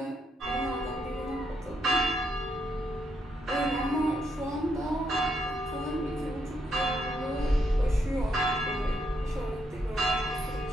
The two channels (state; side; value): normal; both; correlation 0.77